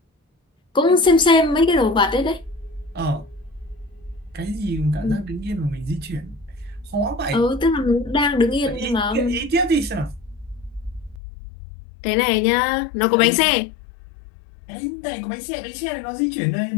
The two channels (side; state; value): right; drops out; at 11.2 s